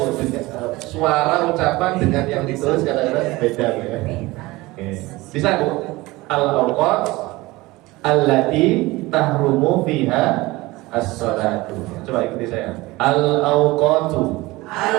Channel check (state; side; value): quieter; left; 20.7 dB